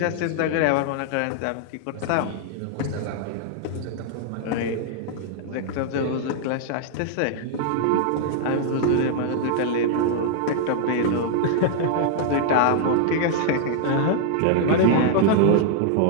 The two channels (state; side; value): different; both; correlation -0.01